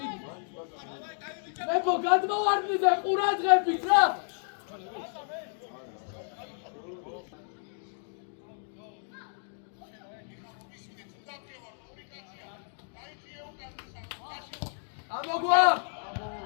მეფო გადმოვარდნი და ყურადღებით რა ამოგვა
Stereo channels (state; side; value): silent; right; 57 dB below the other